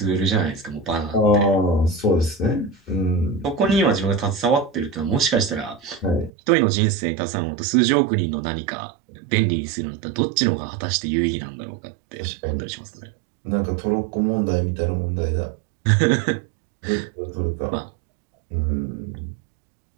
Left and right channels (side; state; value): left; drops out; at 6.3 s